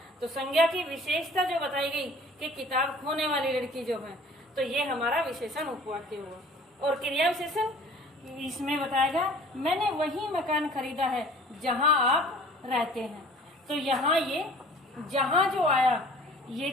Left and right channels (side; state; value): both; normal; correlation 0.49